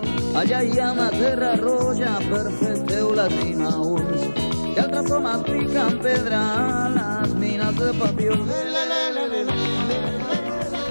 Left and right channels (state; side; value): inverted; both; correlation -1.00